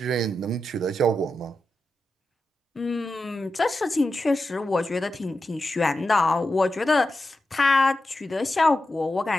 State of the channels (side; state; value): both; normal; correlation 0.90